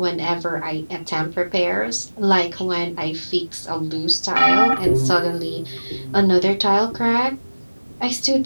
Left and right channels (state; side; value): inverted; both; correlation -1.00